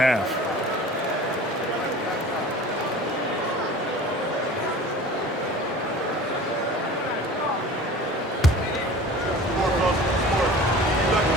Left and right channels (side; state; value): both; normal; correlation 0.41